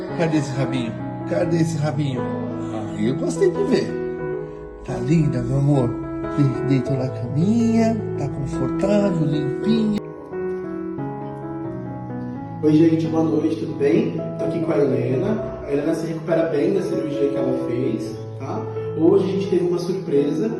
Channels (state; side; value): identical; both; correlation 1.00